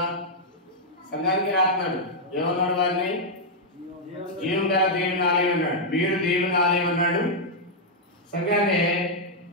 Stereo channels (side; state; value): both; normal; correlation -0.04